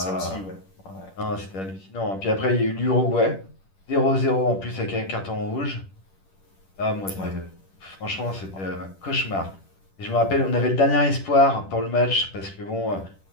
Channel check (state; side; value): late; right; 10 ms